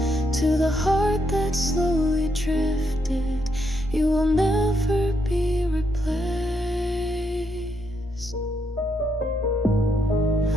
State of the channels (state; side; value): normal; both; correlation 0.78